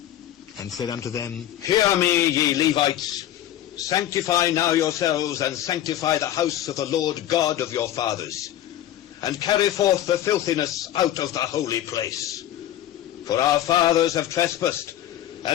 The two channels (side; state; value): right; quieter; 12.4 dB